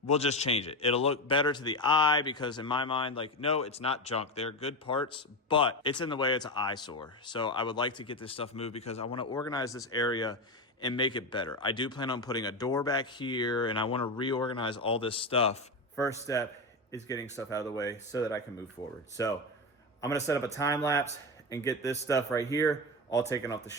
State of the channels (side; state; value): both; normal; correlation 0.17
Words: we'll just change it. It'll look better to the eye because in my mind, like, no, it's not junk. They're good parts, but it's in the way. It's an eyesore. So I would like to get this stuff moved because I want to organize this area and make it better. I do plan on putting a door back here and I want to reorganize all this stuff. First step is getting stuff out of the way so that I can move forward. So I'm going to set up a time lapse and get this stuff right here all taken off the